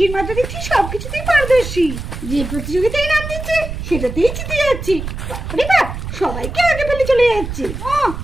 মা তো দেখছি সবকিছুতেই পারদর্শী। যে প্রতিযোগিতায় নাম দিচ্ছে সেটাতেই জিতে যাচ্ছি। সবাইকে আগে ফেলে চলে যাচ্ছে।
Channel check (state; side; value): noise; right; rumble, 7 dB below the sound